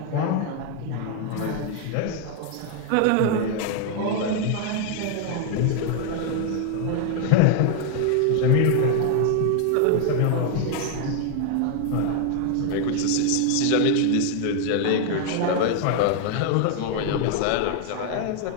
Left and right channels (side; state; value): both; different; correlation 0.00